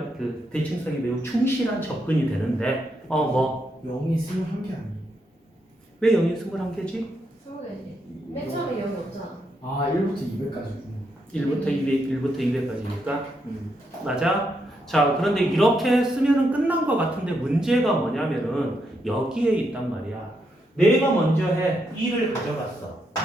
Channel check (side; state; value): both; normal; correlation 0.80